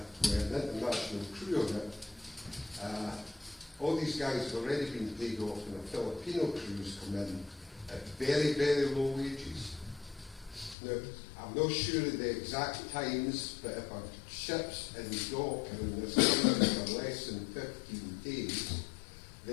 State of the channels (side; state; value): right; drops out; at 10.8 s